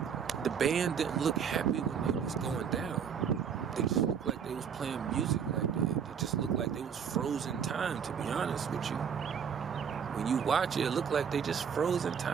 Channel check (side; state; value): left; quieter; 7.3 dB